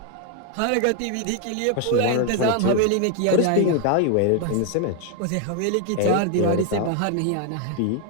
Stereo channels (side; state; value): both; different; correlation 0.01